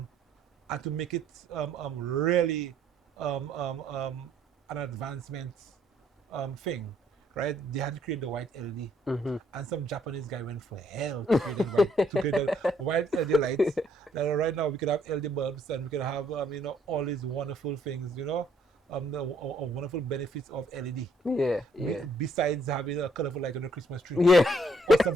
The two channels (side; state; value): both; normal; correlation 0.67